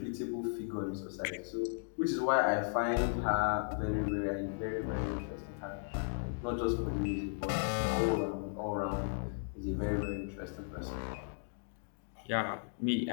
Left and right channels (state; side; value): silent; right; digital silence